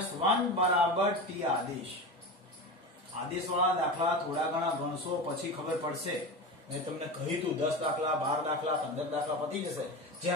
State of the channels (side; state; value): both; normal; correlation 0.25